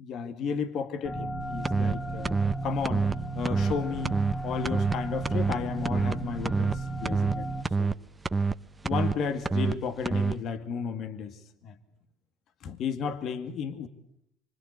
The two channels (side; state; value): both; normal; correlation 0.76